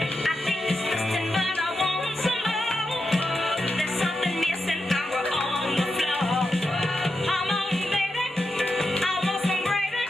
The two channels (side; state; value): both; normal; correlation 0.88